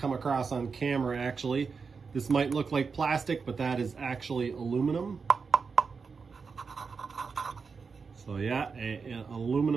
across on camera actually. This might look like plastic, but that is actually aluminum. So yeah, an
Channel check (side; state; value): left; quieter; 5.2 dB